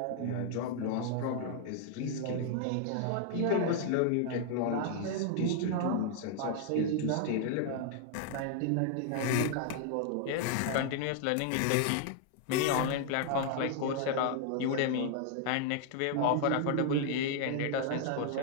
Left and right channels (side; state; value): both; different; correlation 0.00